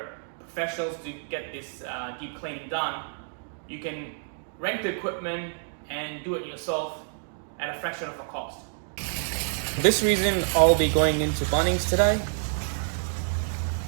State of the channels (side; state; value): left; silent; digital silence